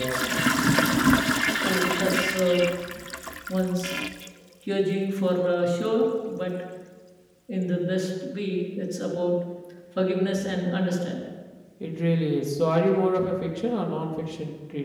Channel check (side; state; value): both; identical; correlation 1.00